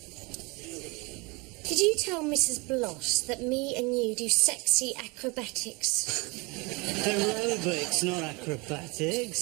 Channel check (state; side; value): quieter; left; 27.4 dB